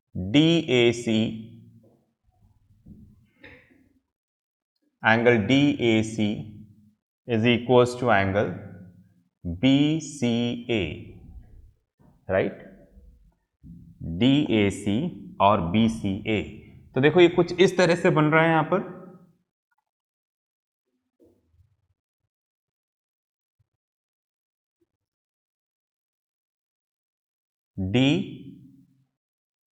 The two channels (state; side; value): identical; both; correlation 1.00